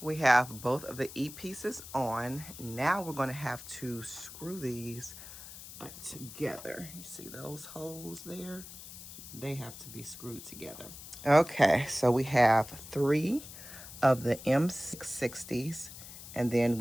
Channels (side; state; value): left; noise; hiss, 14 dB below the sound